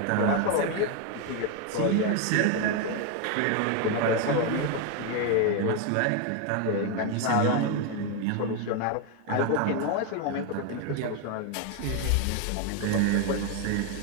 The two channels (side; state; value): both; different; correlation 0.01